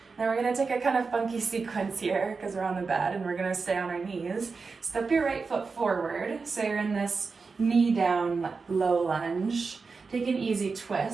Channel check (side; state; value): left; quieter; 4.6 dB